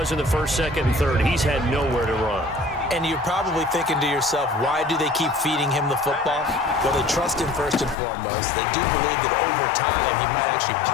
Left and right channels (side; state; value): right; drops out; at 8.0 s